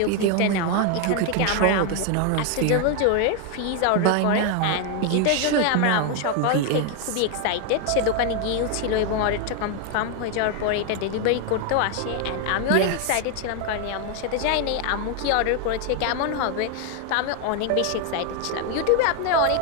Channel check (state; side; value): different; both; correlation 0.01